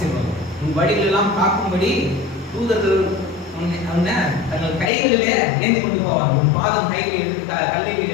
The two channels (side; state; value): right; drops out; at 4.9 s